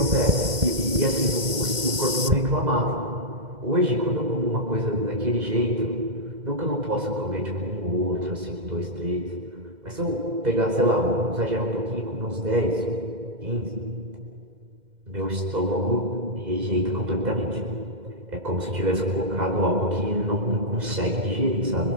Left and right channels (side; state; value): left; late; 2.1 ms